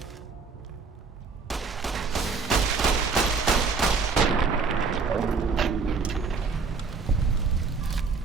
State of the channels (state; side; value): quieter; left; 4.8 dB